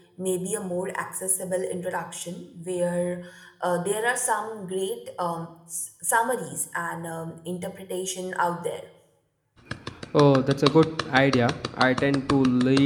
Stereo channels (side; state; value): both; identical; correlation 1.00